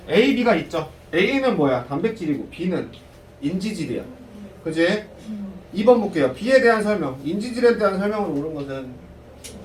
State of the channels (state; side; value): identical; both; correlation 1.00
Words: A, B가 있죠. A는 뭐야? 단백질이고 B는 인지질이야. 그치? 2번 볼게요. B에 대한 설명. 인지질에 대한 설명을 옳은 것은